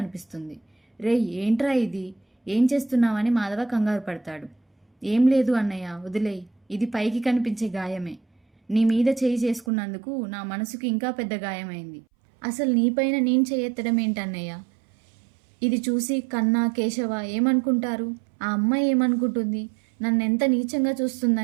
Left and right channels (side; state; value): left; drops out; at 9.7 s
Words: రేయ్ ఏంట్రా ఇది, ఏం చేస్తున్నావని మాధవ కంగారు పడతాడు. ఏం లేదు అన్నయ్య, వదిలేయ్, ఇది పైకి కనిపించే గాయమే. నీ మీద చేయి చేసుకున్నందుకు నా మనసుకు ఇంకా పెద్ద గాయమైంది. అసలు నీపైన నేను చేయెత్తడం ఏంటన్నయ్య, ఇది చూసి కన్నా కేశవ ఏమనుకుంటారు, ఆ అమ్మాయి ఏమనుకుంటుంది, నన్నెంత నీచంగా